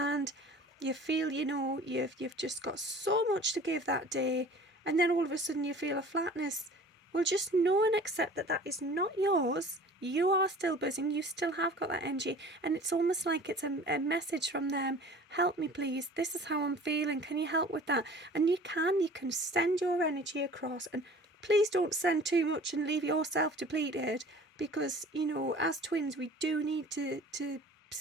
you feel, you know, you've just got so much to give that day, and then all of a sudden you feel a flatness. Well, just know and accept that that is not yours. You are still buzzing, you still have got that energy, and it's almost like it's a message from them. Help me please, this is how I'm feeling, can you help with that? And you can send your energy across, and please don't send too much and leave yourself depleted, because, you know, as twins we do need to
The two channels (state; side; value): normal; both; correlation 0.45